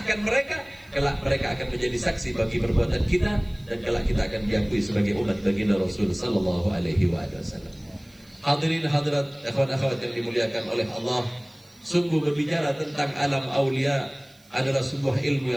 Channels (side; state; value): right; noise; hiss, 29 dB below the sound